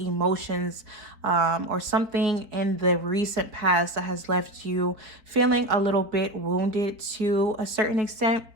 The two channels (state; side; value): late; left; 4.5 ms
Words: or something in the recent past that has left you feeling a little bit wounded to a certain extent.